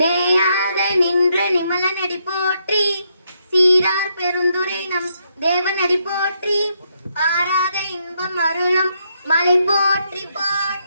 நேயாக நின்ற நிமல நடி போற்றி, சீரார் பெருந்துரை நம் தேவனடி போற்றி, ஆராத இன்பம் அருளும் மலை போற்றி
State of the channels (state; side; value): inverted; both; correlation -0.77